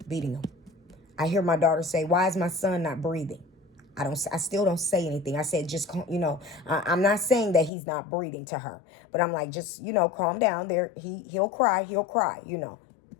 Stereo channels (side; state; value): right; drops out; at 7.7 s